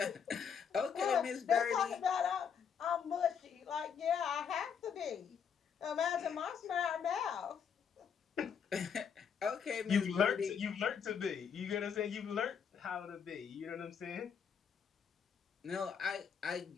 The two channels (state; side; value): quieter; right; 7.2 dB